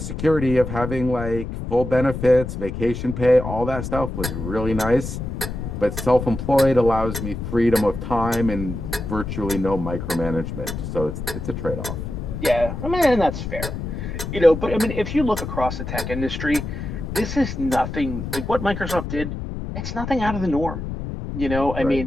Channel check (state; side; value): noise; left; rumble, 6 dB below the sound